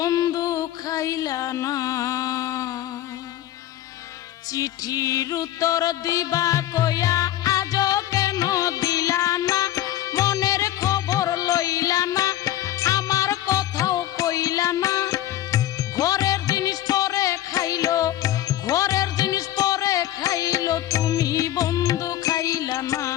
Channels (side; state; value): right; quieter; 13.5 dB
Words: খাইলা না। চিঠির উত্তর দিবা কইয়া আজও কেন দিলা না, মনের খবর লইলা না, আমার কথাও কইলা না, ঘরের জিনিস পরে খাইলো, ঘরের জিনিস পরে খাইলো, তুমি বন্ধু খাইলা না।